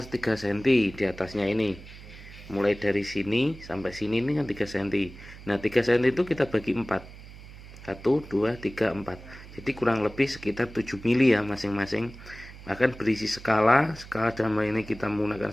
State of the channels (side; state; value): right; noise; hum, 16 dB below the sound